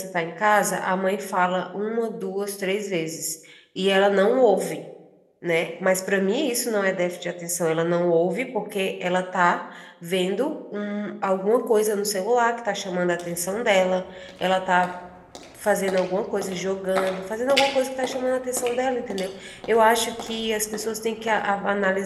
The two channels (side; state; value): both; identical; correlation 1.00